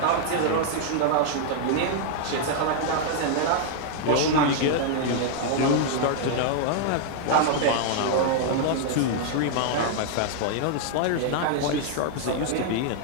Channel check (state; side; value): different; both; correlation -0.01